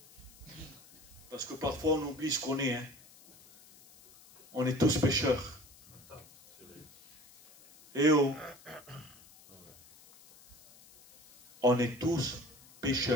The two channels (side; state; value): left; noise; hiss, 24 dB below the sound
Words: Parce que parfois on oublie ce qu'on est. Hein. On est tous pécheurs. Et oh, on est tous